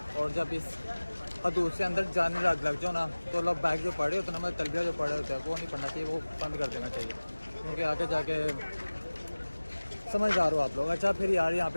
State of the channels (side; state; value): both; inverted; correlation -1.00